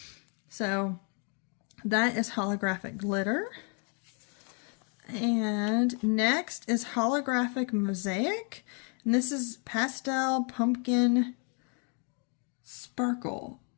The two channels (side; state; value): right; quieter; 37.8 dB